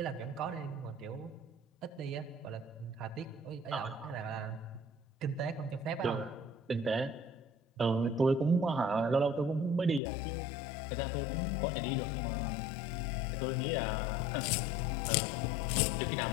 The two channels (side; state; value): right; drops out; at 10.0 s